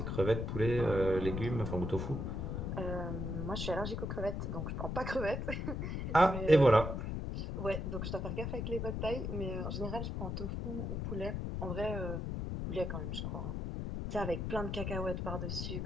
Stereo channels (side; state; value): left; noise; rumble, 3 dB below the sound